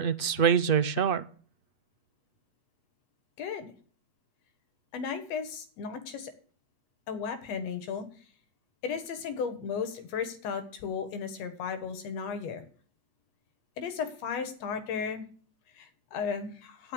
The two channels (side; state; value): right; late; 8.3 ms